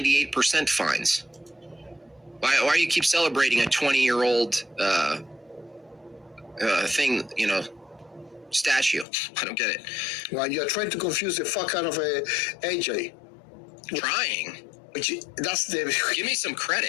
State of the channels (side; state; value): right; drops out; at 9.1 s